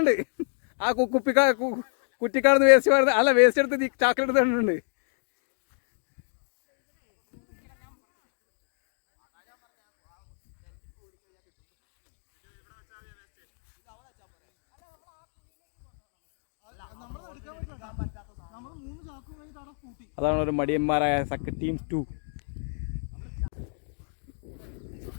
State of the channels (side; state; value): right; silent; digital silence